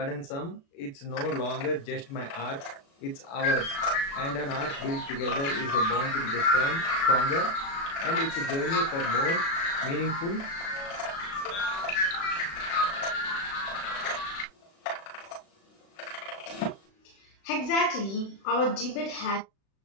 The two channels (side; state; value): right; late; 36 ms